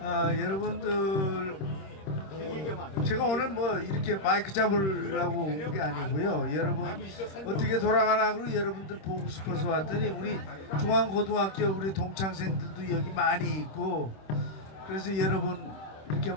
여러분들, 제가 오늘 뭐 이렇게 마이크 잡으려고 온 게 아니고요. 여러분 어떻게 돌아가나 여러분들 보고 싶어서 왔더니 우리 중앙고등학교 우리 동창생들도 여기 많이 있고 그래서 여러분 이렇게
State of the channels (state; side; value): late; right; 26 ms